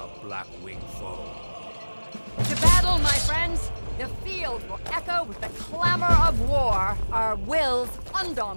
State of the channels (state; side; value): inverted; both; correlation -1.00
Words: black-winged foe. To battle, my friends! The field will echo with the clamor of war, our wills